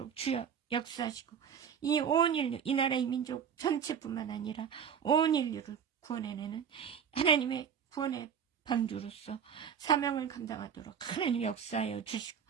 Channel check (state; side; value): quieter; left; 7.7 dB